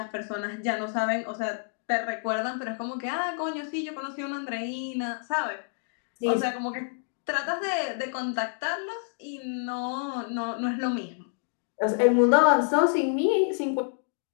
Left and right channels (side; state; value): right; silent; digital silence